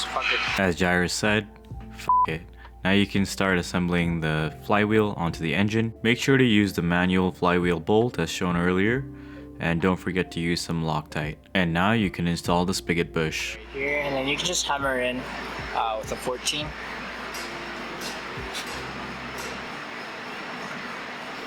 fuck it. As Jairus said, f it. Now you can start assembling the flywheel onto the engine. Make sure to use the manual flywheel bolt as shown earlier, and don't forget to use some Loctite. And now you can install the spigot bush. Right here, and then you can just hammer in with a 14.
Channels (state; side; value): identical; both; correlation 1.00